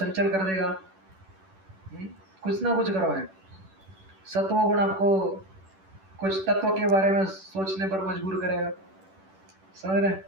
कर देगा, कुछ ना कुछ करवाएंगे। सत्वगुण आपको कुछ तत्व के बारे में सोचने पर मजबूर करेगा। समझ रहे?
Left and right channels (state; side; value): late; left; 10 ms